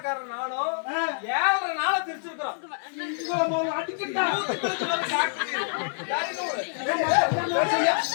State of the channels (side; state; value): right; silent; 60 dB below the other